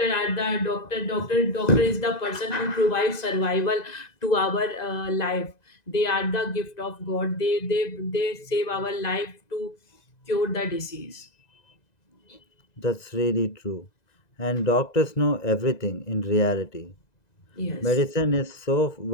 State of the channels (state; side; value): late; right; 2.0 ms